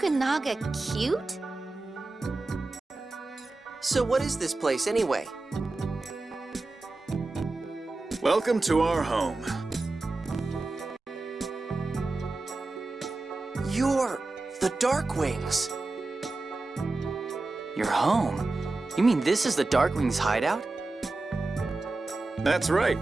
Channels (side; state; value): left; quieter; 3.2 dB